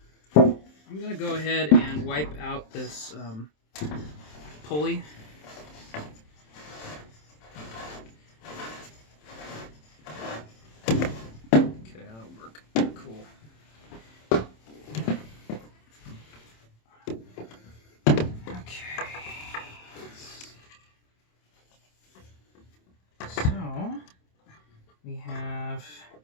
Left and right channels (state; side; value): late; right; 27 ms